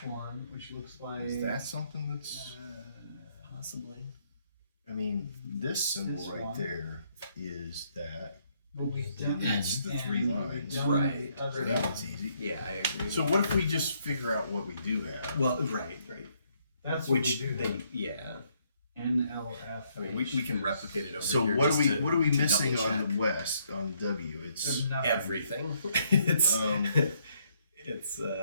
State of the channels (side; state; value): both; inverted; correlation -0.70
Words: one, which looks like. Is that something that's? Possibly. I mean, this symbol This right one? there is that. But we've done That's the and 3 we've lines. done Right. the other So that one. one's easy. Yeah, I agree. So what if we just figure out what we do have? Well, right. That's what Which we do. they, yeah. NLF. I mean, we can replicate it over So here. what just are we to missing double on check. the west on W? It's There's nothing. Everything. It's Um, it's